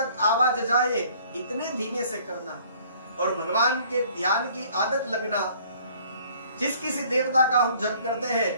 आवाज जाए इतने धीमे से करना और भगवान के ध्यान की आदत लगना। जिस किसी देवता का हम जप करते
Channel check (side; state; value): both; inverted; correlation -0.57